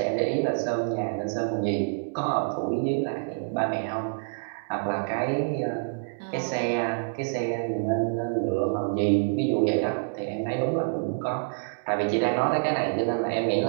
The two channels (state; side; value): silent; left; digital silence